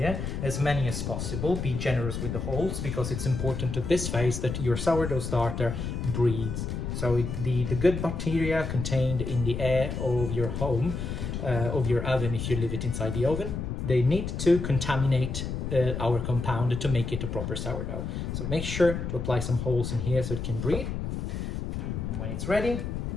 as many as possible. Be generous with the holes because it's important at this phase that your sourdough starter breathes. So the good bacteria contained in the air of your home, of your oven if you leave it inside the oven, they need to contaminate our compound to make it a proper sourdough. So make sure to apply some holes in here so it can breathe. And when it's ready,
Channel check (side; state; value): left; noise; rumble, 4 dB below the sound